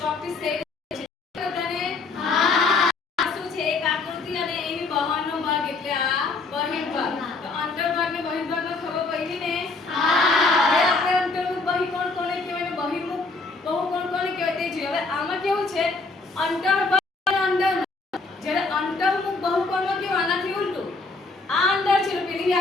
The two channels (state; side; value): quieter; right; 3.7 dB